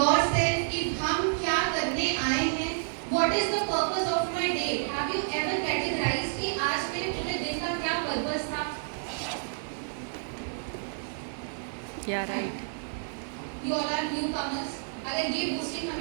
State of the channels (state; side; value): silent; left; digital silence